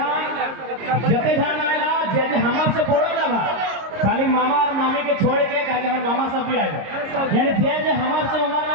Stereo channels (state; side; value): late; left; 26 ms